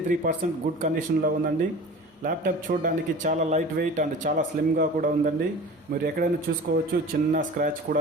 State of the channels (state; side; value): normal; both; correlation 0.39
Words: గుడ్ కండిషన్లో ఉందండి. ల్యాప్టాప్ చూడడానికి చాలా లైట్ వెయిట్ అండ్ చాలా స్లిమ్గా కూడా ఉందండి. మీరు ఎక్కడైనా చూసుకోవచ్చు, చిన్న స్క్రాచ్